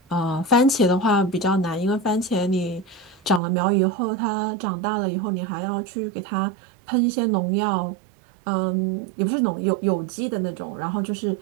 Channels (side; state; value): left; drops out; at 3.4 s